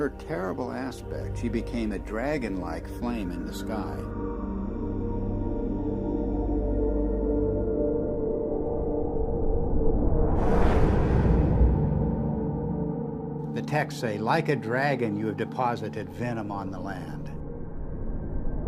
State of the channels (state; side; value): identical; both; correlation 1.00